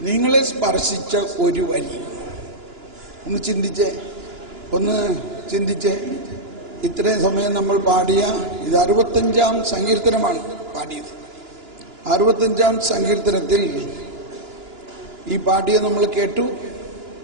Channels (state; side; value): late; left; 2.9 ms